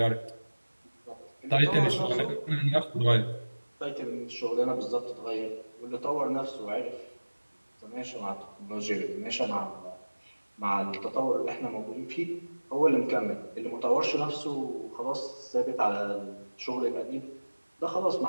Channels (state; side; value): inverted; both; correlation -1.00